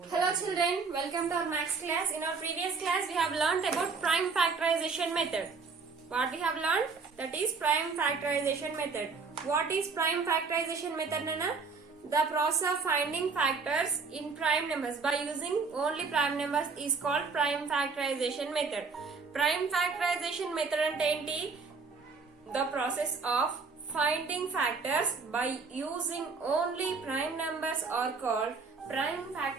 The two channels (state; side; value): quieter; left; 4.7 dB